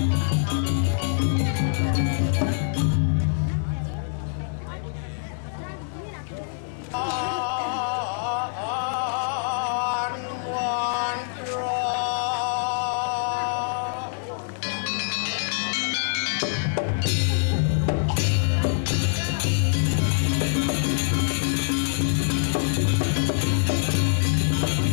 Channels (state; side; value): silent; right; digital silence